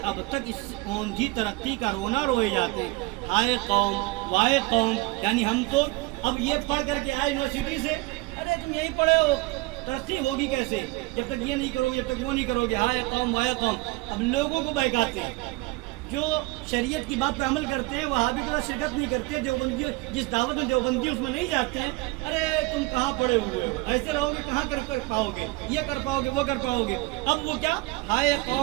اب تک اس اوندھی ترقی کا رونا روئے جاتے. ہائے قوم, وائے قوم, یعنی ہم تو اب یہ پڑھ کر کے آئے یونیورسٹی سے, ارے تم یہی پڑھے ہو, ترقی ہوگی کیسے جب تک یہ نہیں کرو گے, جب تک وہ نہیں کرو گے. ہائے قوم, وائے قوم. اب لوگوں کو بہکاتے ہیں. جو شریعت کی بات پر عمل کرتے ہیں وہاں بھی کوئی شرکت نہیں کرتے, دیوبندی جس دعوت میں دیوبندی اس میں نہیں جاتے ہیں. ارے تم کہاں پڑے ہوئے ہو, ایسے رہو گے کہاں کر پاؤ گے, یہ کر پاؤ گے, وہ کر پاؤ گے. اب وہ کیا, ہائے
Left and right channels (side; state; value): left; quieter; 22.6 dB